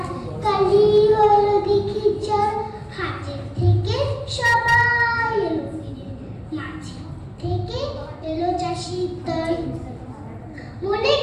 কালি হলো দিঘি জল, হাটের থেকে সবাই এলো ফিরে, মাঝে থেকে এলো চাষির দল। মনে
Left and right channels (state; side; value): identical; both; correlation 1.00